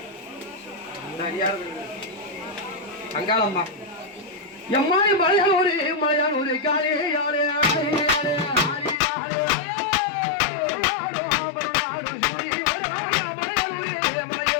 சரி யார் அங்காளம்மா எம்மாடி மலையானூர் காலே யாரே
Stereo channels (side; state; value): right; drops out; at 9.0 s